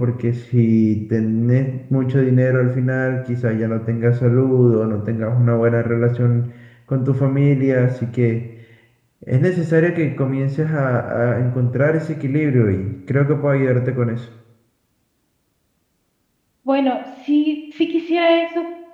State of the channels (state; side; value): identical; both; correlation 1.00